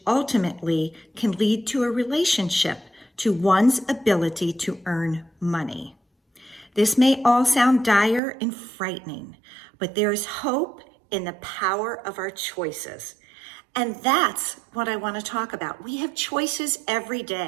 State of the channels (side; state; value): left; drops out; at 8.2 s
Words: ultimately can lead to a relationship to one's ability to earn money. This may all sound dire and frightening, but there is hope in the power of our choices. And that's what I want to talk about. We have choices every